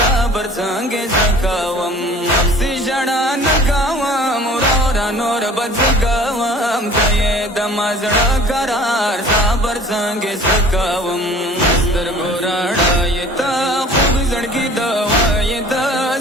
संगे सकावम से जड़ा नकावम रोरा नोर बदगवम दये दमाज करार साबर संगे सकावम मस्तर गोराड़ा ये ता खूब जड़की दवा ये ता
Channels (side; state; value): both; normal; correlation 0.48